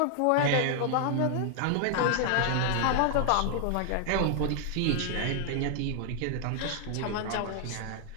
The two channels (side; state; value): both; different; correlation 0.00